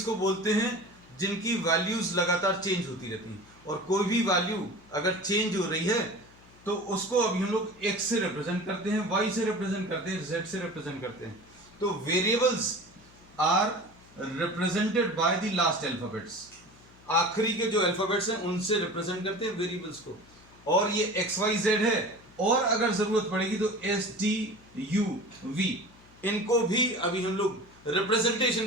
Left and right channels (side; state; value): left; noise; hum, 25 dB below the sound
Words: को बोलते हैं जिनकी वैल्यूज लगातार चेंज होती रहती हैं, और कोई भी वैल्यू अगर चेंज हो रही है तो उसको अभी हम लोग x से रिप्रेजेंट करते हैं, y से रिप्रेजेंट करते हैं, z से रिप्रेजेंट करते हैं। तो variables are represented by the last alphabets. आखिरी के जो अल्फाबेट्स हैं उनसे रिप्रेजेंट करते हैं वेरिएबल्स को, और ये एक्स वाई जेड है, और अगर जरूरत पड़ेगी तो एस टी यू वी, इनको भी अभी हम लोग